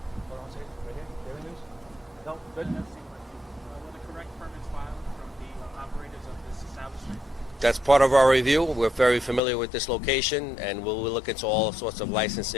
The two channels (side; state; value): right; drops out; at 9.4 s